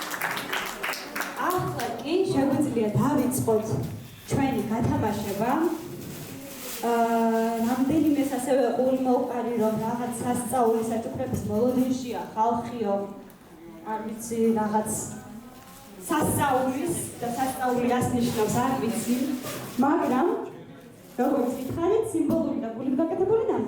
ახლა კი შეგვიძლია დავიწყოთ ჩვენი გათამაშება. რამდენიმეს ასევე ყურიმოუყარი რომ რაღაც სასწაული საჩუქრების მოლოდინშია ხალხიო, არ ვიცი რაღაც სასწაულის და სასწაული რას ნიშნავს არ ვიცი, მაგრამ როგორც გითხარით სიმბოლური და გულით გაკეთებული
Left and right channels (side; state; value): both; identical; correlation 1.00